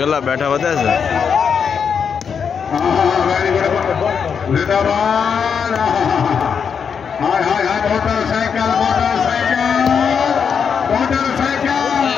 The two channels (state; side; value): quieter; right; 6.7 dB